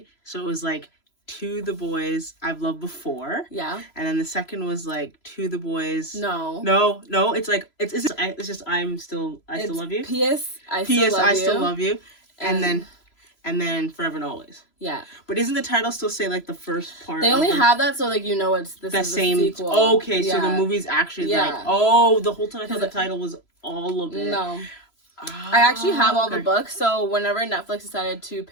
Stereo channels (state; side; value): late; right; 3.0 ms